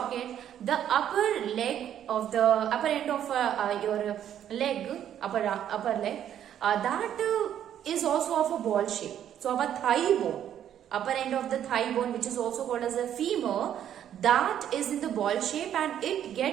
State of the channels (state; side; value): quieter; left; 10.2 dB